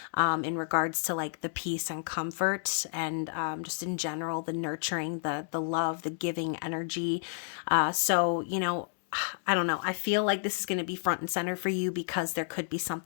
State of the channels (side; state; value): right; silent; digital silence